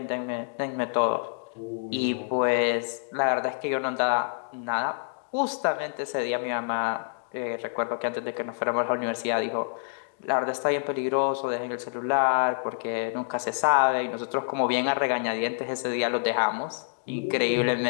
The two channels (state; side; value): silent; right; digital silence